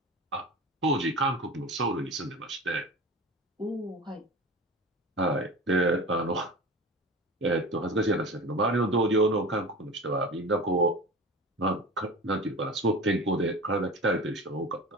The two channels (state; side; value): normal; both; correlation 0.33